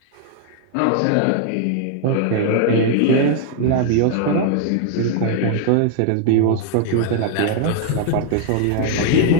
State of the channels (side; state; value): both; different; correlation 0.00